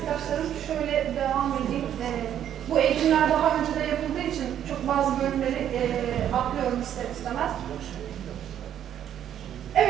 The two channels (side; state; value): left; quieter; 10.2 dB